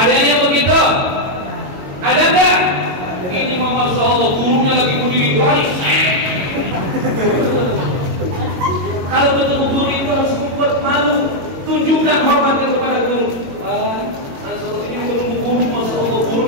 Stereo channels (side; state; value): left; late; 22 ms